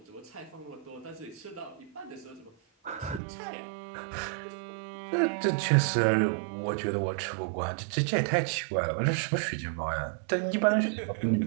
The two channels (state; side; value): drops out; left; at 3.2 s